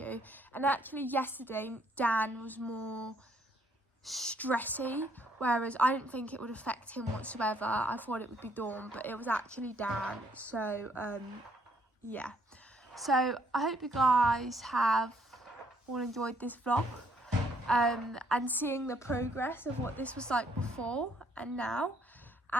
And actually yesterday, Dan was more stressy, whereas I didn't think it would affect him whatsoever. I thought it would be Dawn, but it was actually Dan. So, yeah. So, I hope you guys have all enjoyed this vlog. And seeing the progress of what this was like before and now.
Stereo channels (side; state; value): both; normal; correlation 0.67